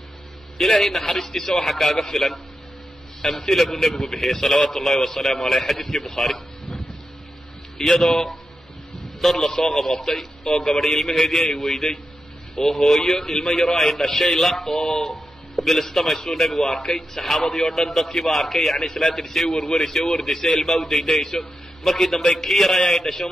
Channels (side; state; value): both; normal; correlation 0.89